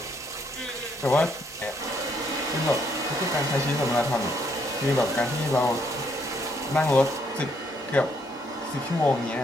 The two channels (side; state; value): both; normal; correlation 0.71